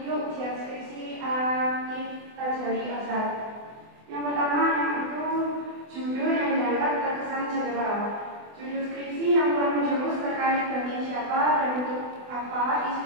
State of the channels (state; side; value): late; left; 24 ms